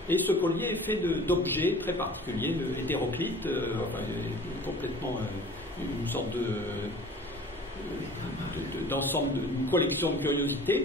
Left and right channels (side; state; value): both; normal; correlation 0.45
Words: Et ce collier est fait d'objets très particuliers, le hétéroclite, complètement une sorte d'ensemble, d'une collection de